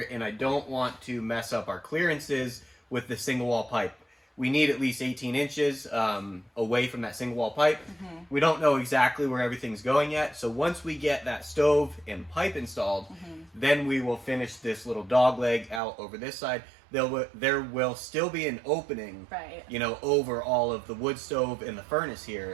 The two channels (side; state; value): left; drops out; at 15.8 s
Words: and I don't want to mess up our clearances with the single wall pipe. We need at least 18 inches away from that single wall pipe. We don't know exactly where everything's going yet. So once we get that stove and pipe installed, then we will finish this little dog leg out over this side. There will still be an opening, Right. you know, over all of the wood stove and the furnace